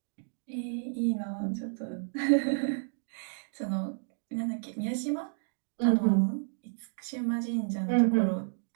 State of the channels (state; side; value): silent; left; digital silence